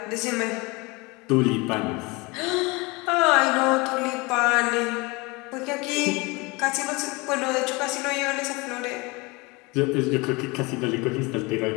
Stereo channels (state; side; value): quieter; right; 25.7 dB